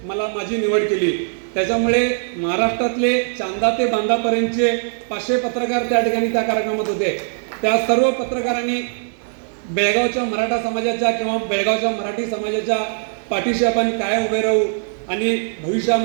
माझी निवड केली. त्याच्यामुळे महाराष्ट्रातले चांदा ते बांदापर्यंतचे 500 पत्रकार त्या ठिकाणी त्या कार्यक्रमात होते. त्या सर्व पत्रकारांनी बेळगावच्या मराठा समाजाच्या किंवा बेळगावच्या मराठी समाजाच्या पाठीशी आपण काय उभे राहू आणि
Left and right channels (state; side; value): silent; left; digital silence